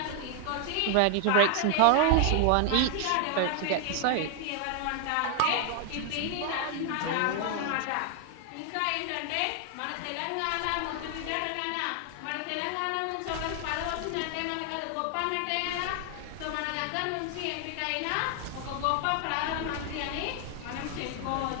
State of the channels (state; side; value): different; both; correlation 0.00